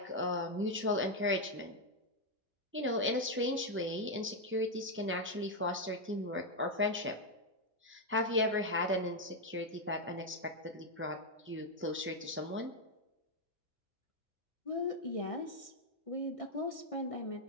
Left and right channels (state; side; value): normal; both; correlation 0.01